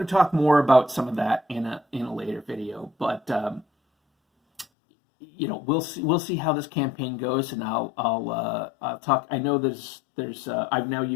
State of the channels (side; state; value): right; drops out; at 4.7 s